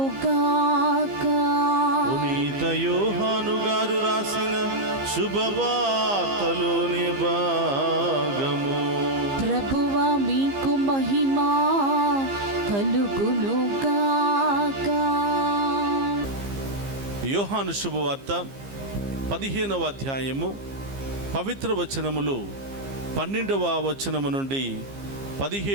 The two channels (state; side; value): late; left; 15 ms